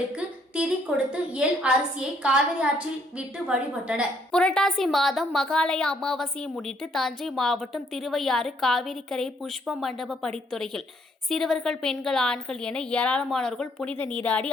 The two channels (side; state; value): both; normal; correlation 0.68